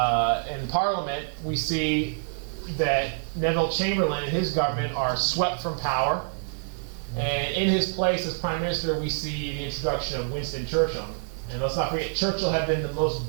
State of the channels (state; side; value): silent; left; digital silence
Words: Parliament, we see that Neville Chamberlain and his government are swept from power, and in his place as Prime Minister, we see the introduction of Winston Churchill. And let's not forget, Churchill had been the most